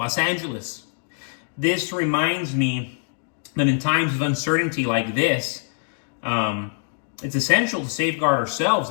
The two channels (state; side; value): silent; right; digital silence